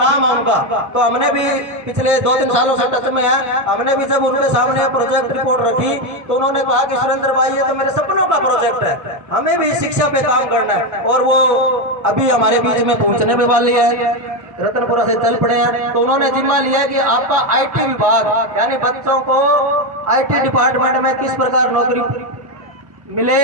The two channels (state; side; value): late; left; 1.6 ms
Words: है उनका, तो हमने भी पिछले 2-3 सालों से टच में है। हमने भी जब उनके सामने प्रोजेक्ट रिपोर्ट रखी तो उन्होंने कहा कि सुरेंद्र भाई ये तो मेरे सपनों का प्रोजेक्ट है, हमें भी शिक्षा पे काम करना है। और वो अभी हमारे बीच में पहुंचने में वाली है, रतनपुरा से चल पड़े हैं। तो उन्होंने जिम्मा लिया कि आपका IT विभाग, यानी बच्चों को IT डिपार्टमेंट में किस प्रकार नौकरी मिले